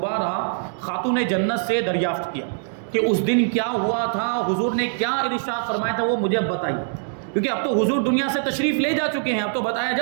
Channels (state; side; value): silent; left; digital silence